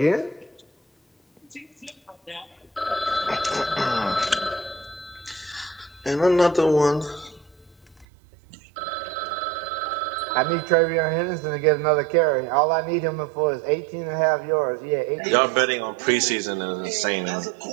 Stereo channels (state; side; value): drops out; left; at 8.1 s